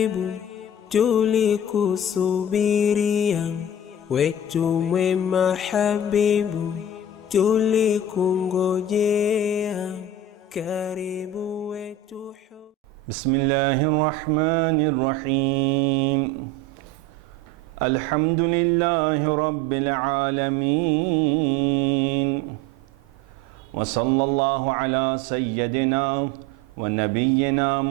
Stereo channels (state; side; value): normal; both; correlation 0.34